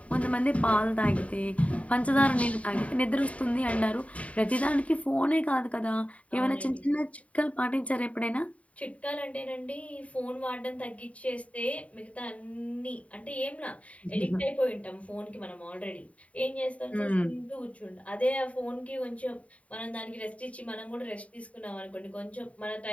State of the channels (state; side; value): late; right; 0.067 ms